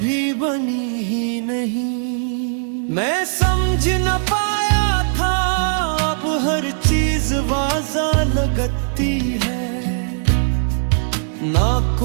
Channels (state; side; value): silent; left; 64 dB below the other